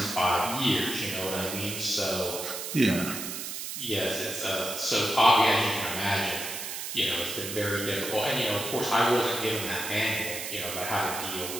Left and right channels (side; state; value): right; noise; hiss, 6 dB below the sound